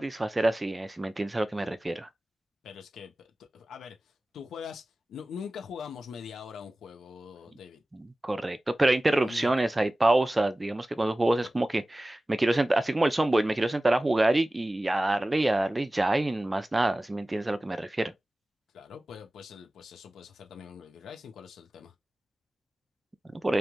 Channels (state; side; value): normal; both; correlation 0.97